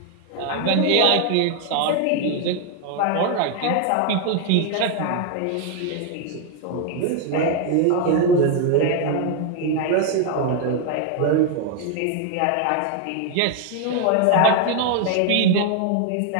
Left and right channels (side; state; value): both; different; correlation 0.01